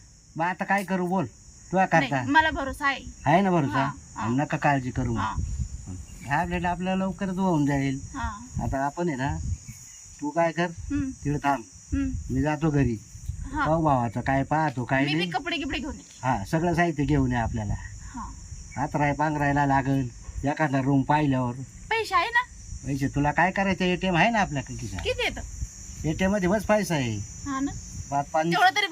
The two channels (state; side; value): identical; both; correlation 1.00